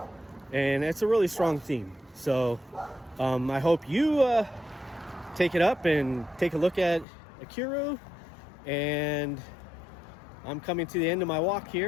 And it's a really strong theme. So I hope you take it up and take a look at Ikiru. And I'm coming to the end of my walk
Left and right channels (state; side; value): drops out; right; at 7.1 s